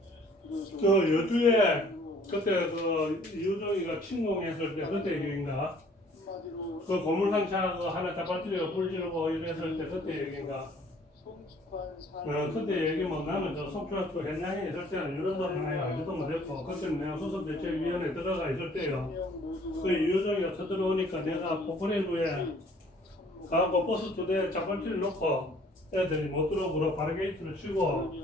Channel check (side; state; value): both; normal; correlation 0.57